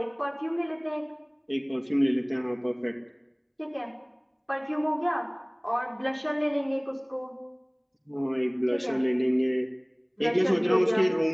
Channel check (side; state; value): both; identical; correlation 1.00